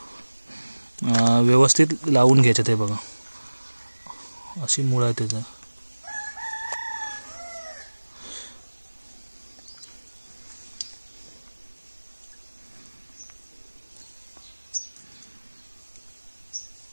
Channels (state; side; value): inverted; both; correlation -1.00